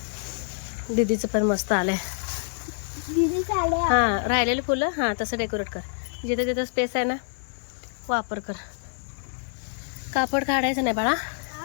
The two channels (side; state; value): right; silent; 61 dB below the other